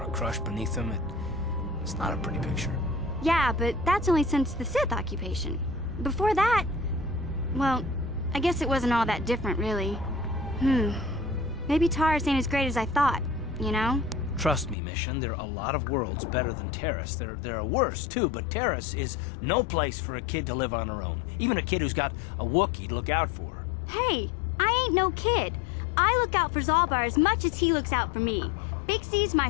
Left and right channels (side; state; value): right; drops out; at 14.8 s